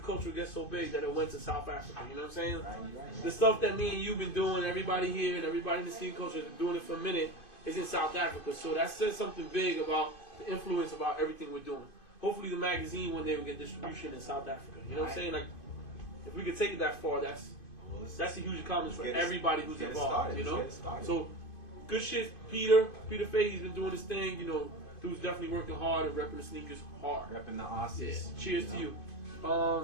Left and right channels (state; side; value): late; right; 2.5 ms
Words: culture would get so big that it went to South Africa? You know what I'm saying? Right. The stuff that me and you've been doing, everybody here and everybody in the sneaker culture has been doing it for a minute, is in South Africa. So that says something big about the influence about everything we're doing. Hopefully the magazine one day will get distribution in South Africa. You know what I'm saying? Like, if we could take it that far, that's a huge accomplishment for everybody who's involved. You know? So good shit, Peter Fay, he's been doing his thing, you know. Dude's definitely working hard and repping the sneakers hard. Repping the Aussies. Yeah. Cheers to you.